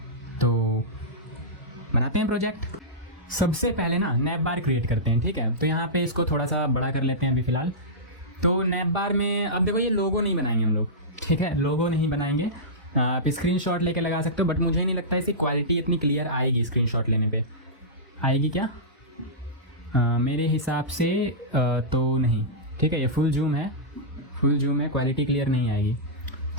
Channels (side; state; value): both; normal; correlation -0.15